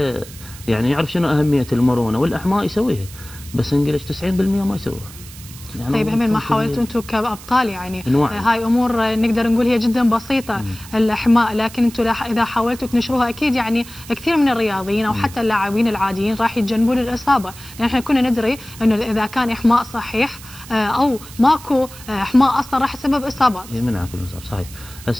يعني يعرف شنو اهميه المرونه والاحماء يسويها، بس انجلش 90% ما يسويها. يعني طيب همين ما حاولتوا انتم كابطال يعني هاي امور نقدر نقول هي جدا بسيطه الاحماء، لكن انتم اذا حاولتوا تنشروها اكيد يعني كثير من الرياضيين او حتى اللاعبين العاديين راح يتجنبون الاصابه، لان احنا كنا ندري انه اذا كان احماء صحيح او ماكو احماء اصلا راح يسبب اصابات. يمنع كل الاصابات صحيح.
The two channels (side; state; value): right; noise; hiss, 17 dB below the sound